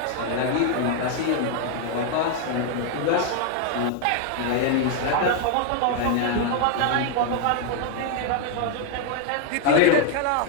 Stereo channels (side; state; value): both; different; correlation 0.00